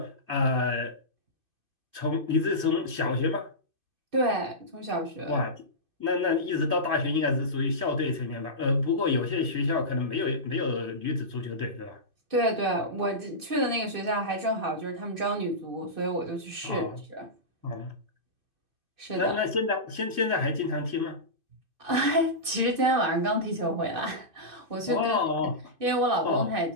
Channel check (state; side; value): late; left; 2.5 ms